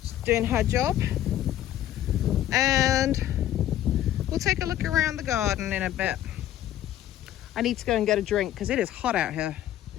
doing her job. And we'll take a look around the garden in a bit. I need to go and get a drink because it is hot out here.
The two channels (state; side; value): quieter; right; 12.4 dB